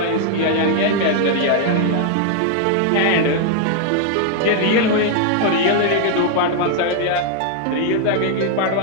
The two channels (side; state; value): both; different; correlation 0.00